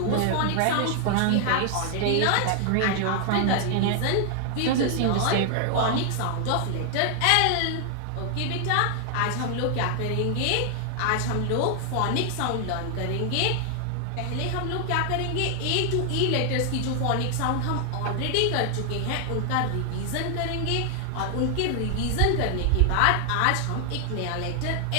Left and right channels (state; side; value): different; both; correlation 0.00